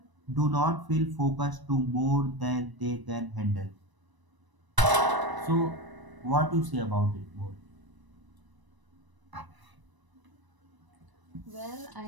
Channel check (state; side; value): late; left; 1.0 ms